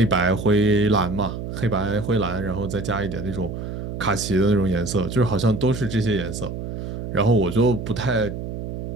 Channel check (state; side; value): noise; right; hum, 6 dB below the sound